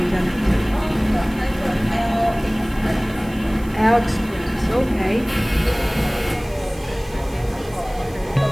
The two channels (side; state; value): right; noise; hiss, 23 dB below the sound